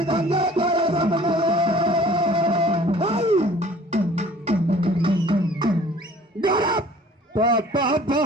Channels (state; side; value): normal; both; correlation 0.51